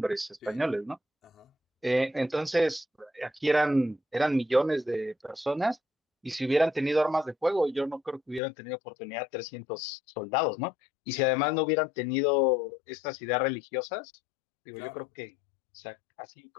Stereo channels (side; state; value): right; drops out; at 8.4 s